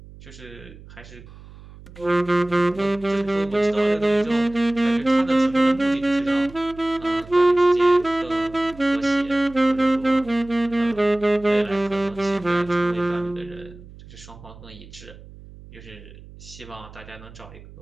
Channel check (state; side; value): noise; right; hum, 19 dB below the sound